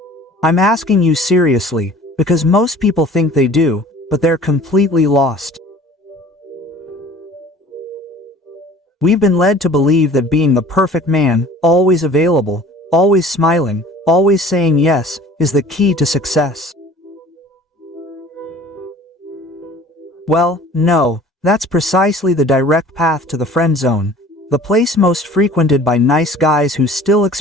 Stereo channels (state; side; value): normal; both; correlation 0.47